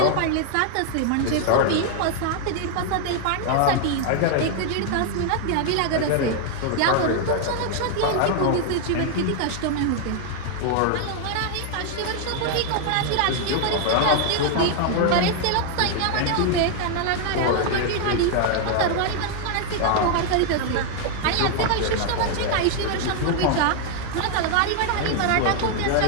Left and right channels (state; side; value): different; both; correlation 0.00